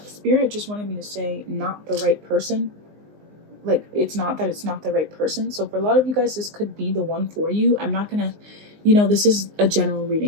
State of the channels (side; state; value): left; late; 19 ms